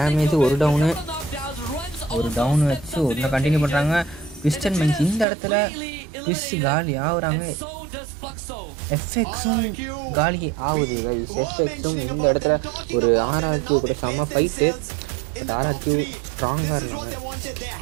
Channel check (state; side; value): drops out; left; at 5.2 s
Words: ஒரு டவுனு வச்சு ஒன்று கண்டினியூ பண்ணுறாங்க. பிஸ்டன் மைன்ஸ் இந்த இடத்துல பிஸ் காலி ஆகுறாங்க. எஃப்எக்ஸும் காலி ஆகுது கைஸ். எஃப்எக்ஸும் இந்த இடத்துல ஒரு ஆர்ஆர்கியூ கூட செம்ம ஃபைட்டு. பட் ஆர்ஆர்கியூ ஸ்ட்ராங்காக இருந்தாங்க.